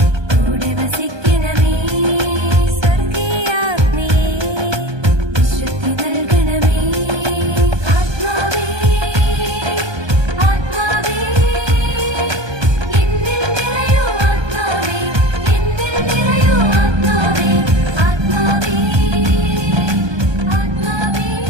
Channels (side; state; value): left; late; 1.2 ms